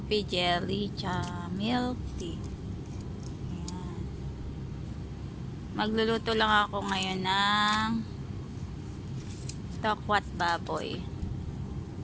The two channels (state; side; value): identical; both; correlation 1.00